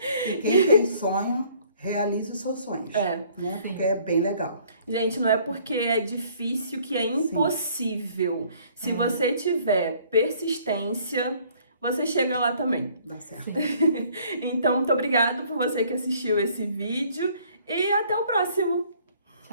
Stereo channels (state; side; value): inverted; both; correlation -0.59